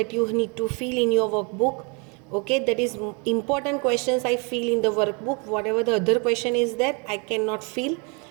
you need to fill in your workbook. Okay, that is important questions I fill in the workbook. Whatever the other question is that I cannot fill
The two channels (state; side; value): quieter; left; 33.3 dB